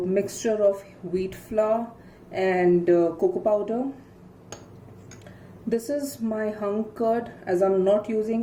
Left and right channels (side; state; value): both; identical; correlation 1.00